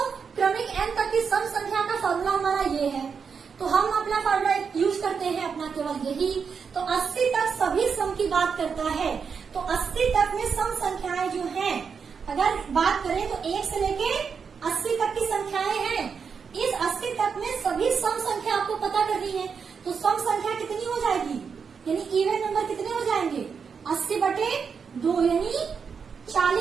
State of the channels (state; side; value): quieter; left; 6.1 dB